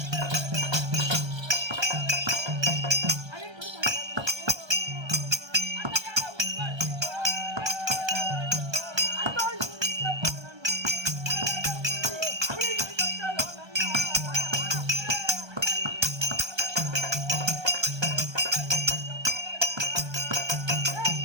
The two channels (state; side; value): late; left; 1.3 ms